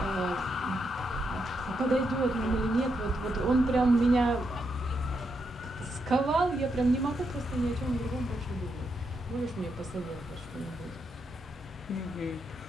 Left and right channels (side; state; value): both; normal; correlation 0.81